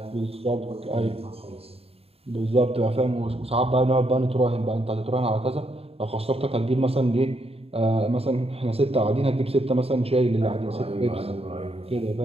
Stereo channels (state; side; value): late; left; 0.29 ms